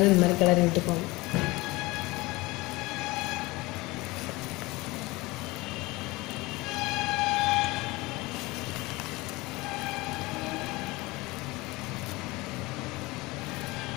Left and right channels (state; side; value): quieter; right; 22.1 dB